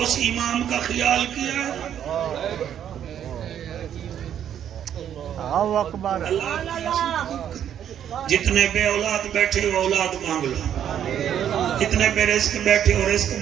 امام کا خیال کیا جتنے بے اولاد بیٹھے ہو اولاد مانگ لو جتنے بے رزق بیٹھے ہو رزق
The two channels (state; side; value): quieter; left; 9.7 dB